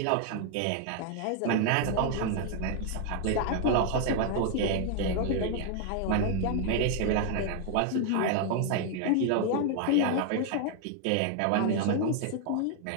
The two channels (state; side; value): different; both; correlation 0.00